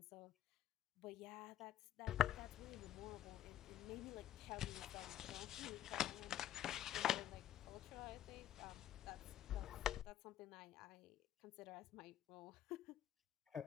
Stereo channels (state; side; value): quieter; right; 12.1 dB